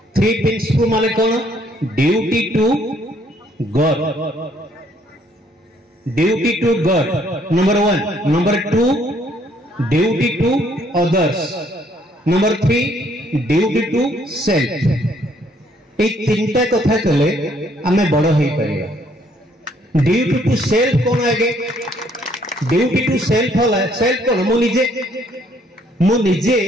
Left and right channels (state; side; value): normal; both; correlation 0.66